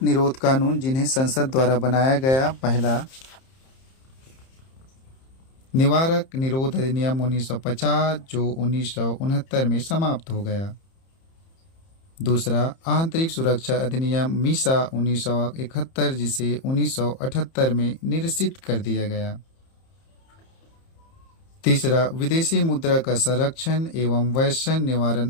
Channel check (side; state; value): right; late; 30 ms